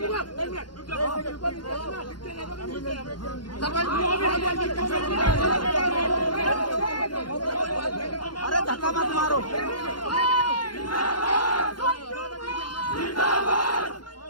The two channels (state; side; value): late; right; 0.71 ms